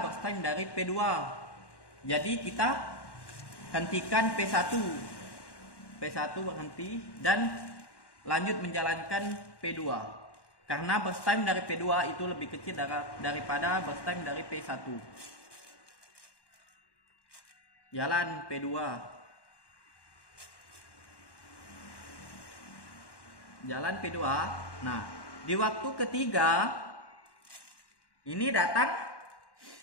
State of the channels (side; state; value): right; late; 1.1 ms